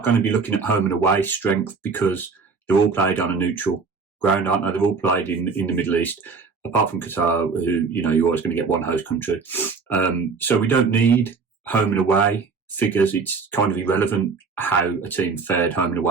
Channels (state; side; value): quieter; left; 4.9 dB